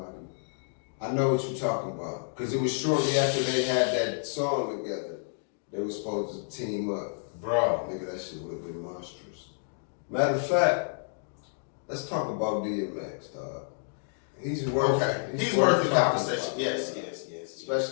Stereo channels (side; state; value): right; silent; digital silence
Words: I know what you're talking about. Because it was shortly after they had that song together. They were supposed to team up. Bro. Nigga, that shit would have been monstrous. Matter of fact, let's talk about DMX, dog. He's worth He's worth the talking conversation. about. Yes.